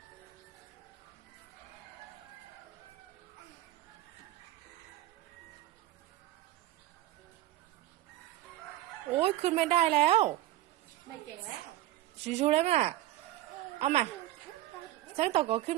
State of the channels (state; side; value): quieter; left; 14.6 dB